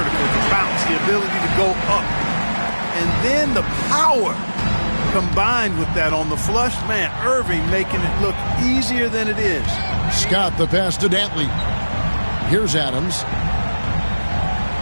the bounce, the ability to go up. And then the power combined with that on the flush. Man, Irving making it look easier than it is. Scott the pass to Dantley. Here's Adams.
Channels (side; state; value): both; inverted; correlation -1.00